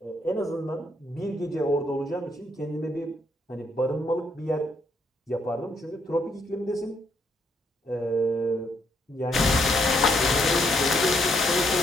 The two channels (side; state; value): both; normal; correlation 0.73